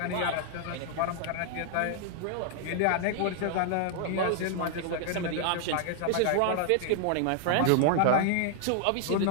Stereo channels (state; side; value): different; both; correlation 0.00